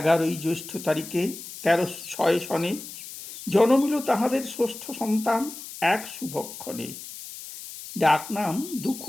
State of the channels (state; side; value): noise; left; hiss, 12 dB below the sound